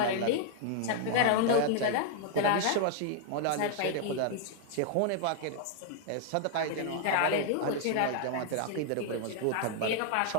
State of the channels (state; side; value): different; both; correlation 0.00